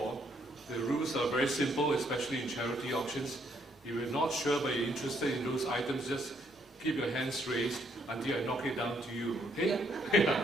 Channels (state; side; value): normal; both; correlation 0.71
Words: the rules are very simple, especially in charity auctions. If you're not sure but you're interested in those items, just keep your hands raised until I knock it down to you, okay?